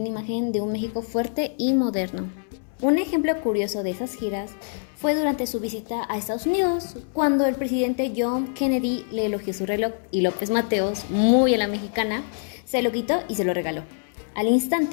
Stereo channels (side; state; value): right; silent; 62 dB below the other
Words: una imagen de un México fuerte y moderno. Un ejemplo curioso de esas giras fue durante su visita a Estados Unidos, cuando el presidente John Kennedy le elogió su reloj y López Mateos, muy a la mexicana, se lo quitó y se lo regaló. Al